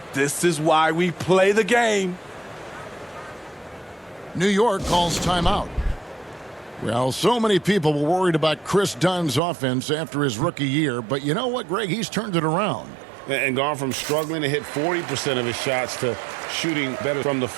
this is why we play the game. New York calls timeout. Well, so many people were worried about Chris Dunn's offense after his rookie year, but you know what, Greg? He's turned it around. And gone from struggling to hit 40% of his shots to shooting better from the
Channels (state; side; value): drops out; left; at 9.4 s